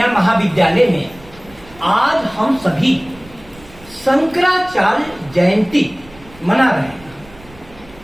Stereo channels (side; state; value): right; noise; rumble, 23 dB below the sound